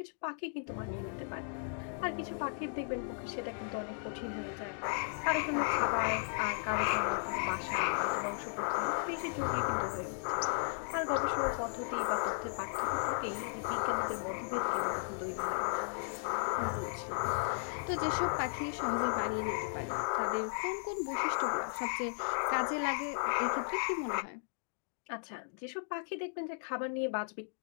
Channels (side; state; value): right; silent; digital silence